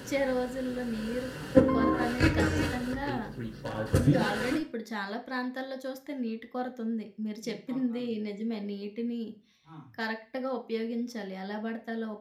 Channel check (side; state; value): both; identical; correlation 1.00